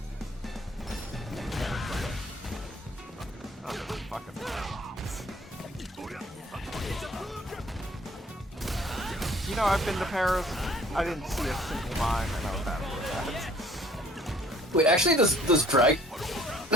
You know, I've been to Paris. I didn't see a single mime, and I was happy with that. Wait, actually, does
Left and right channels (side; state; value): both; normal; correlation 0.56